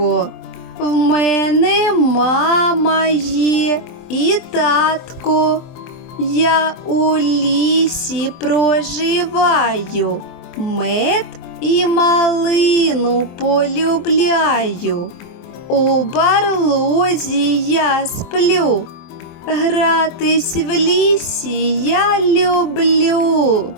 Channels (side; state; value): right; late; 23 ms